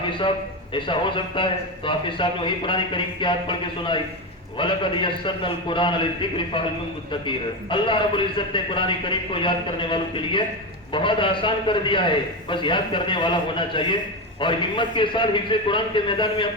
صاحب ایسا ہو سکتا ہے؟ تو حافظ صاحب نے وہی قرآن کریم کی آیت پڑھ کے سنائی، وَلَقَدْ يَسَّرْنَا الْقُرْآنَ لِلذِّكْرِ فَهَلْ مِن مُدَّكِرٍ۔ اللہ رب العزت نے قرآن کریم کو یاد کرنے والوں کے لیے بہت آسان کر دیا ہے، بس یاد کرنے والا ہونا چاہیے اور ہمت کے ساتھ حفظ قرآن کے میدان میں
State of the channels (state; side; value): normal; both; correlation 0.15